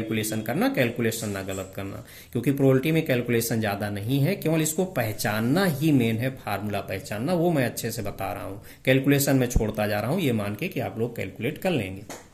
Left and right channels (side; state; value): both; identical; correlation 1.00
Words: करना, कैलकुलेशन ना गलत करना, क्योंकि प्रोबेबिलिटी में कैलकुलेशन ज्यादा नहीं है, केवल इसको पहचानना ही मेन है, फार्मूला पहचानना, वो मैं अच्छे से बता रहा हूं। कैलकुलेशन में छोड़ता जा रहा हूं, ये मान के कि आप लोग कैलकुलेट कर लेंगे।